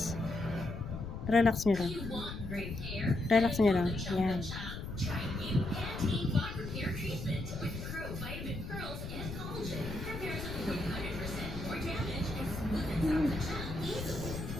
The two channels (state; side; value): noise; left; rumble, 7 dB below the sound